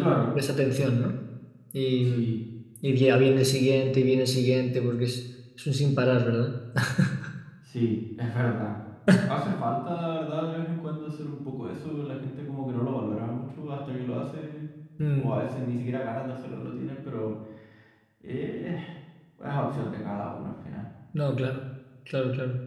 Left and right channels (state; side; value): identical; both; correlation 1.00